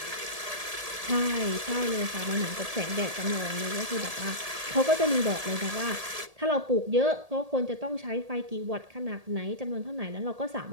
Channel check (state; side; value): late; left; 1.8 ms